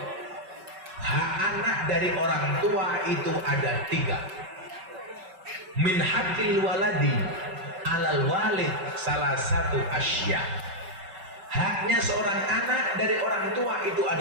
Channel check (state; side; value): late; left; 5.3 ms